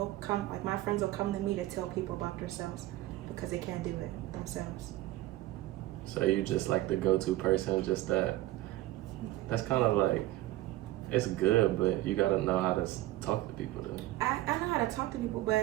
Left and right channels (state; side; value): quieter; left; 16.4 dB